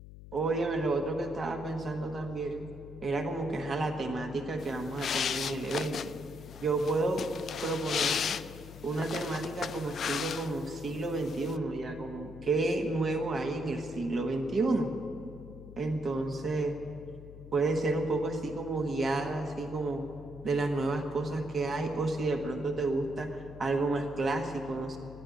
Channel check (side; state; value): left; noise; hum, 15 dB below the sound